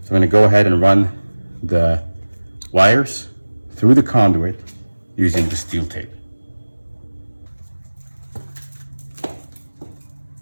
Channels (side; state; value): both; inverted; correlation -1.00